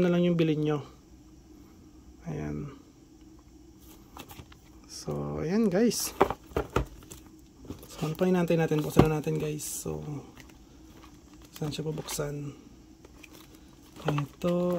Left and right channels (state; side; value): identical; both; correlation 1.00